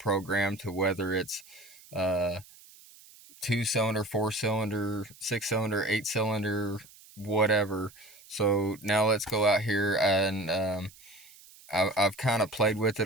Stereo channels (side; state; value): right; noise; hiss, 23 dB below the sound